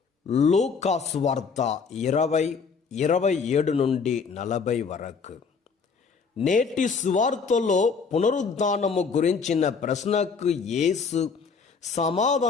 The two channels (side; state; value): right; quieter; 5.4 dB